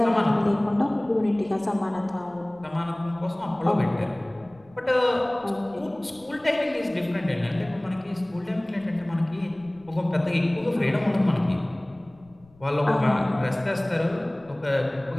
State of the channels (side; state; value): left; noise; rumble, 28 dB below the sound